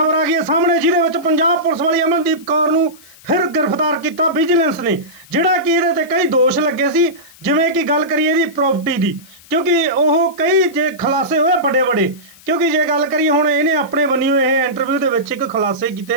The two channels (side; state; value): left; noise; hiss, 24 dB below the sound